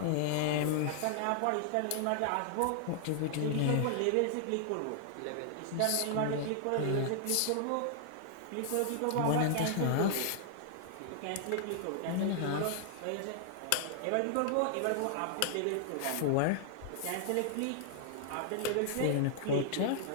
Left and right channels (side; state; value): both; different; correlation -0.01